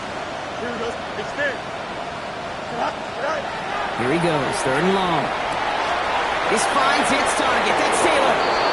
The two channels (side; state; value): both; identical; correlation 1.00